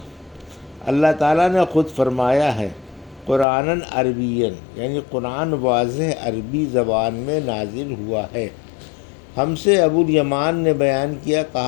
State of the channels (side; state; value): right; drops out; at 3.5 s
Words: اللہ تعالیٰ نے خود فرمایا ہے، قرآناً عربیاً، یعنی قرآن واضح عربی زبان میں نازل ہوا ہے۔ ہم سے ابو الیمان نے بیان کیا،